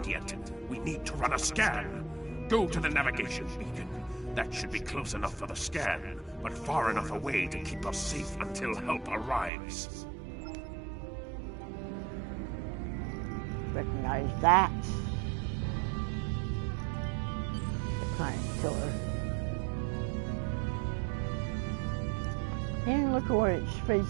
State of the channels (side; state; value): left; drops out; at 9.5 s